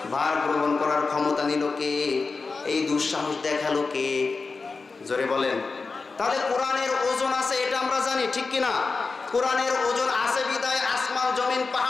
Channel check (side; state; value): right; quieter; 4.3 dB